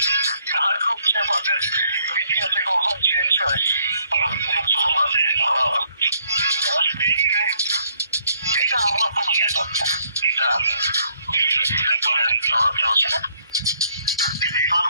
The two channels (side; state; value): both; inverted; correlation -0.68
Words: তার রূপ যে আমাদের ভিডিওতে কখন চেঞ্জ হয় এটা আমার কোনো জ্ঞান না, এটা আমি